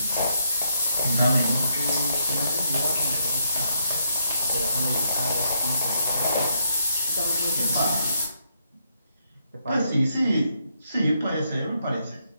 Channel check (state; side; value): inverted; both; correlation -0.76